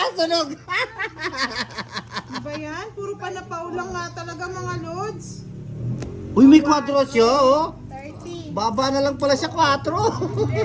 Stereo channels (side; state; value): both; identical; correlation 1.00